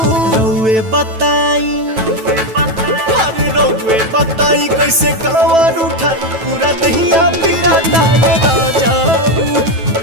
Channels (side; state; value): left; late; 9.2 ms